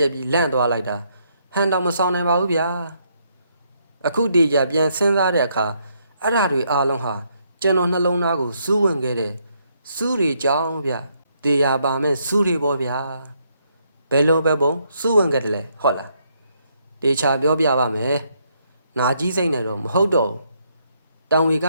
က်ပြီးလန့်သွားလိုက်တာဟန်တော်မဆောင်နိုင်ပါဘူးဗျာအခုတည်းကြပြန်စဉ်းစားတဲ့အခါအဲ့ဓာတွေအားလုံးဟာကျွန်တော်နှလုံးသားကိုစူးဝင်ခဲ့တဲ့စူးတွေကြောင်းဗျတေးရပါမဲ့စူးတွေပေါ့ဗျာ ဘယ်လိုပဲပုံစုဝင်ခဲ့တယ်လဲဟုတ်လားတေချာပြောပြပါမယ်နာကြီးစိတ်နဲ့တော့မဟုတ်တော့တောင်ဝေက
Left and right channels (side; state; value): both; inverted; correlation -0.74